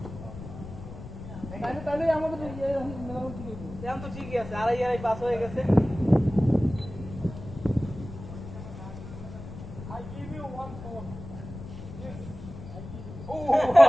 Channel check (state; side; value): noise; left; rumble, 12 dB below the sound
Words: তাহলে আমাদের মেলানো ঠিক আছে এখন তো ঠিকই আছে আড়াই পাস হয়ে গেছে I give you one phone yes I give you